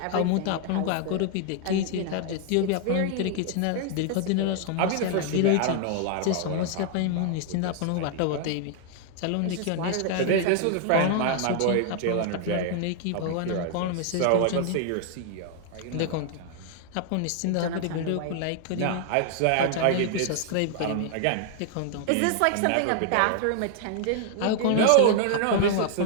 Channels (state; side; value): different; both; correlation 0.00